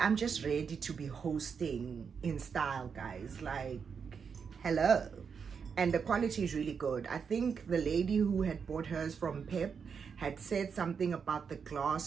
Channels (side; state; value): left; quieter; 6.3 dB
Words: just ready to be hosting in style, guys. Like, hello. And the quality is really good. I think the lady who had bought hers from Pep had said something about the